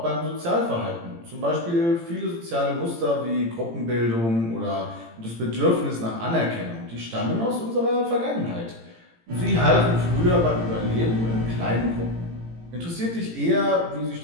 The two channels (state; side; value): late; left; 18 ms